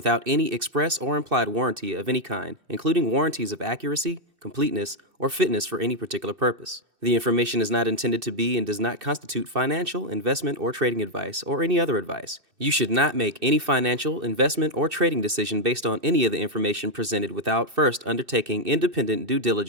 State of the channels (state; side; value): late; left; 2.6 ms